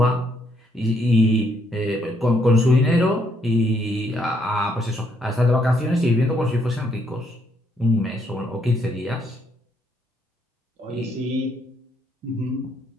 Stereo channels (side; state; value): both; normal; correlation 0.72